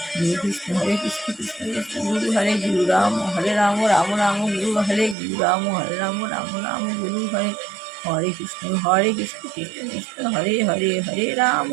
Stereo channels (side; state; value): left; drops out; at 5.2 s